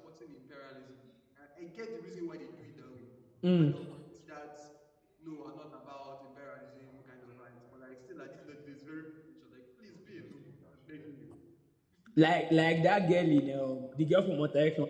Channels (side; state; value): both; identical; correlation 1.00